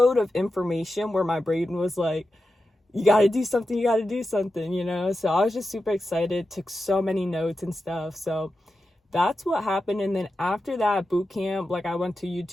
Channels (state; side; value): normal; both; correlation 0.91